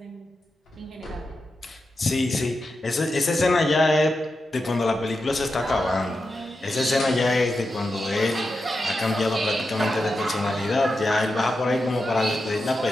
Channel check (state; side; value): normal; both; correlation 0.89